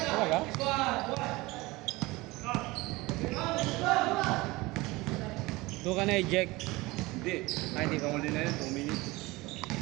Doon ka na-eject. Hindi. Ay, hindi ka muli na yun, 2 minutes.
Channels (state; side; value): quieter; left; 21.6 dB